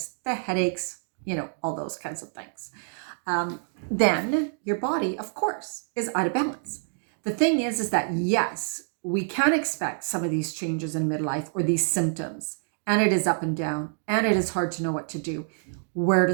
the headaches, all those kinds of things, then your body, of course, is out of balance. The thing is that yes, we can expect some of these changes in midlife or these symptoms, and it is up and down, and it is hard to know what to do, where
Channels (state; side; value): silent; left; digital silence